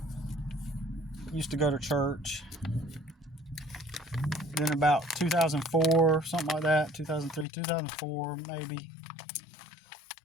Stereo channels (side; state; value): right; drops out; at 7.5 s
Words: used to go to church. Then about 2004, something like that, 2003, 2004 maybe,